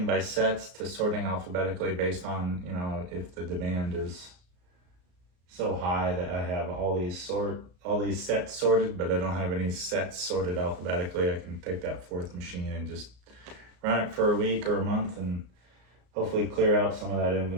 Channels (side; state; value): left; late; 34 ms